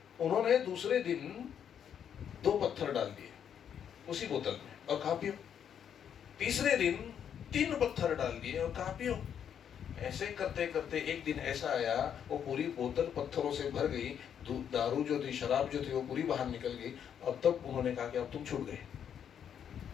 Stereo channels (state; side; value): quieter; right; 8.6 dB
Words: उन्होंने दूसरे दिन 2 पत्थर डाल दिए उसी बोतल में और कहा पियो। तीसरे दिन 3 पत्थर डाल दिए और कहा पियो। ऐसे करते करते एक दिन ऐसा आया, वो पूरी बोतल पत्थरों से भर गई। दारू जो थी, शराब जो थी, वो पूरी बाहर निकल गई। अब तब उन्होंने कहा कि अब तुम छूट गए।